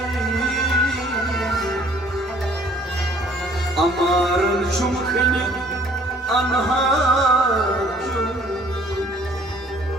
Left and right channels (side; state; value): both; normal; correlation 0.57